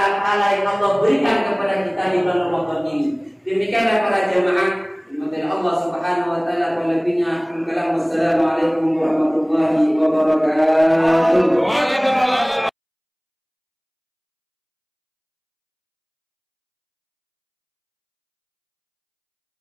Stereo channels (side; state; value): both; identical; correlation 1.00